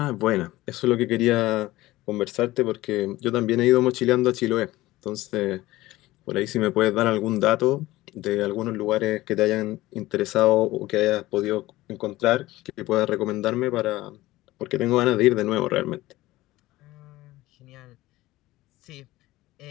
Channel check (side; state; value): right; quieter; 17.6 dB